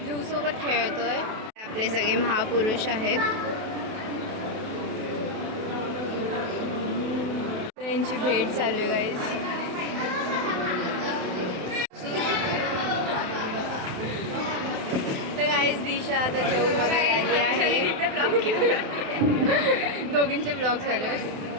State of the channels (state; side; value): late; left; 28 ms